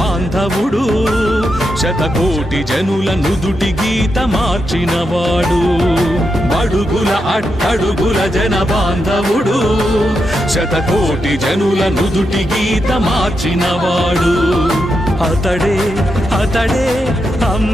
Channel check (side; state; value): both; normal; correlation 0.85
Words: శతకోటి జనుల నుదుటి గీత మార్చినవాడు. బడుగుల అట్టడుగుల జన బాంధవుడు శతకోటి జనుల నుదుటి గీత మార్చినవాడు. అతడే అతడే